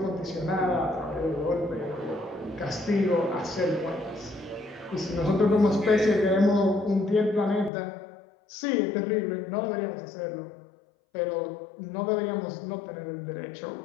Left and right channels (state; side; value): drops out; right; at 7.7 s